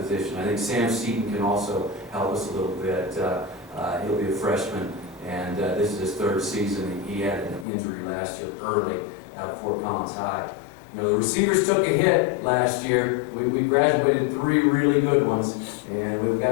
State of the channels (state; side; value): drops out; right; at 7.7 s